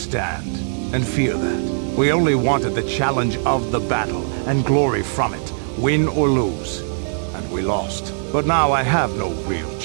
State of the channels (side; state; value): left; silent; digital silence